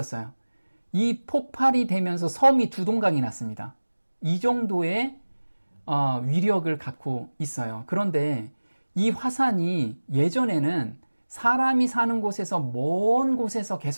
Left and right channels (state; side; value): inverted; both; correlation -1.00